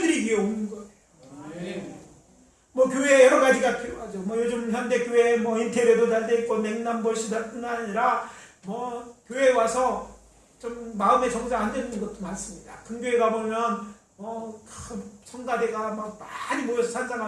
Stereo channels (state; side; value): identical; both; correlation 1.00